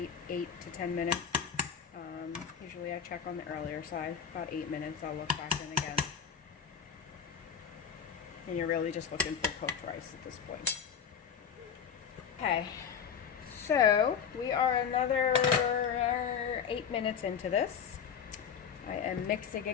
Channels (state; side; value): quieter; right; 7.3 dB